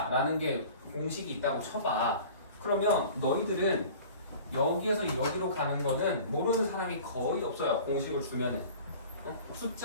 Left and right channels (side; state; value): both; inverted; correlation -0.43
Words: 게 공식이 있다고 쳐봐. 그러면 너희들은 여기에서 여기로 가는 거는 모르는 사람이 거의 없어요. 공식을 주면은.